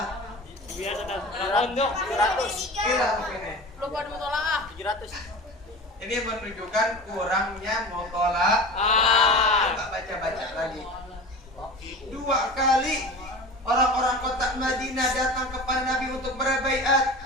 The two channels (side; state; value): both; normal; correlation 0.34